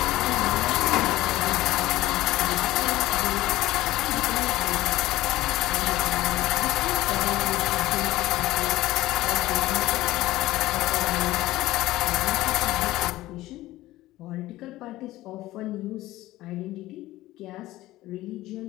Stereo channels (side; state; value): right; quieter; 16.8 dB